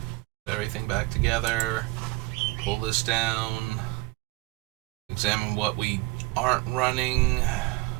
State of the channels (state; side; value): quieter; left; 21.8 dB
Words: everything back together. Pull this down. Examine what we aren't running. Is